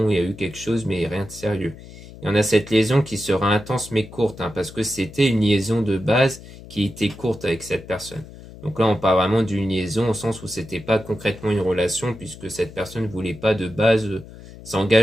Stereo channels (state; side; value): noise; left; hum, 17 dB below the sound